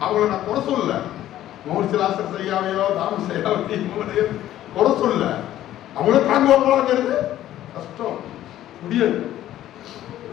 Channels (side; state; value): right; quieter; 13.0 dB